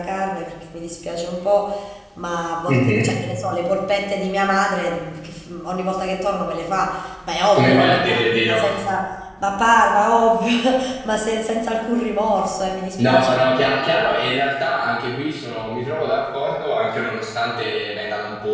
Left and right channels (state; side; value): identical; both; correlation 1.00